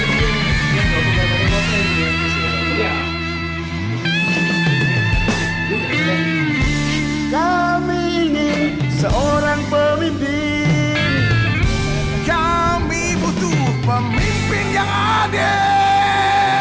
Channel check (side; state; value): both; identical; correlation 1.00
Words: Kami ingin seorang pemimpin. Kami butuh pemimpin yang adil.